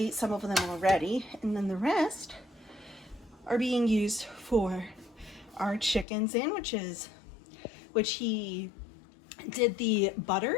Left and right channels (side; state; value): right; drops out; at 6.1 s